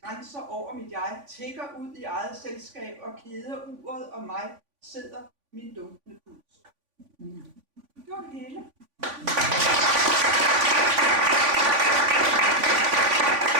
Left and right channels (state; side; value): late; left; 3.5 ms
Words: grænser over mit jeg tikker ud i eget selskab, og keder uret og mig sidder min dunkende puls. Det var det hele.